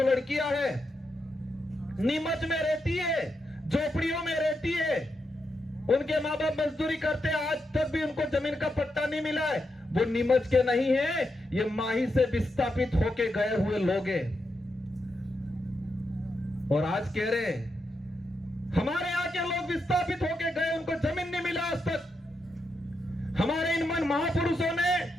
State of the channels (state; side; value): normal; both; correlation 0.84